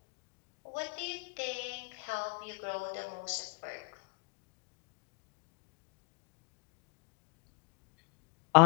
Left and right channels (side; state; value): right; quieter; 31.1 dB